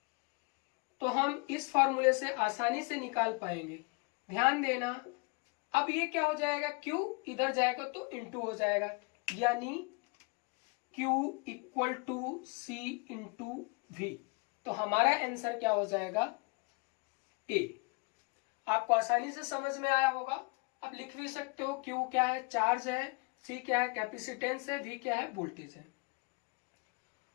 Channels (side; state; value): right; quieter; 29.2 dB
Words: तो हम इस फार्मूले से आसानी से निकाल पाएंगे। ध्यान देना, अब ये क्या हो जाएगा, Q इधर जाएगा तो इंटू हो जाएगा, यानी Q equal to C into V। तो हमारा आंसर क्या हो जाएगा, A। आपको आसानी से समझ में आया होगा। अब लिख भी सकते हो, Q क्या है, चार्ज है, C क्या है, कैपेसिटेंस है, V क्या है, वोल्टेज है।